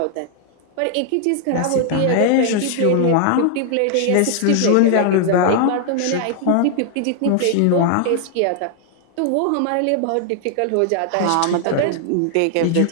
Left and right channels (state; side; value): different; both; correlation 0.00